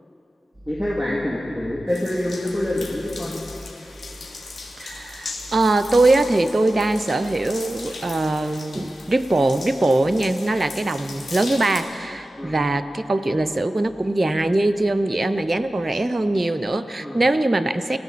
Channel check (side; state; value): both; normal; correlation 0.95